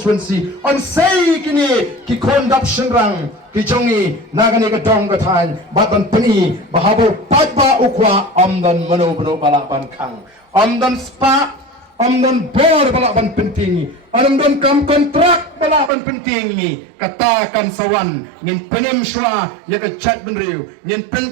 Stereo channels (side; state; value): left; drops out; at 15.9 s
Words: on say kini ki conduction rang ki jongi nagani ke dong ke tan batan peni bahabo patba ukwa amdan mano bano balaban kang amdan spa amdan bor balaban penting amdan kam kontrak balaban penting ni katakan sawan nin penem shwa ya ke chat benriu nin